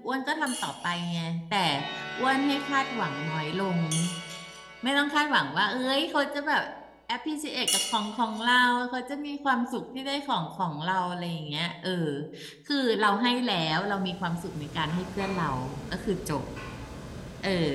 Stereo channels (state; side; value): identical; both; correlation 1.00